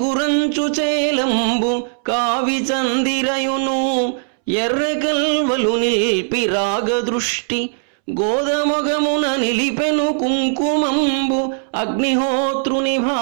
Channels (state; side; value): silent; left; 67 dB below the other